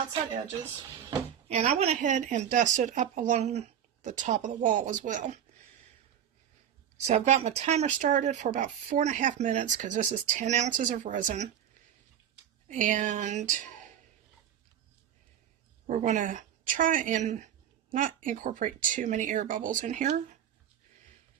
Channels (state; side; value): quieter; left; 9.6 dB